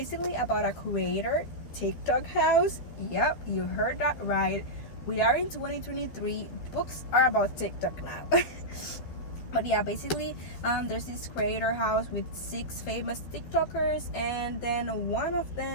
about a creator TikTok house. Yep, you heard that right. We are in 2023. Books are about TikTok now. But yeah, basically there's this creator house with 6 famous TikTokers, and then one of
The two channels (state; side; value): late; right; 12 ms